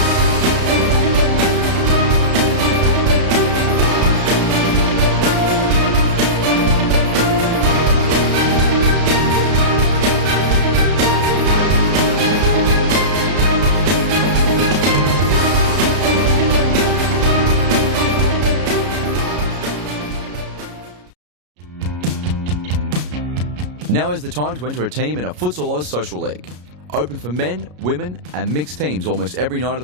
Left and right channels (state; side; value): late; left; 33 ms